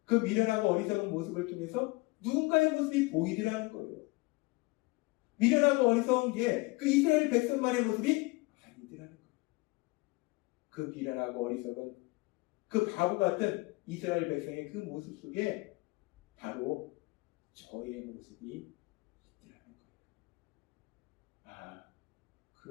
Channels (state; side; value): quieter; right; 24.6 dB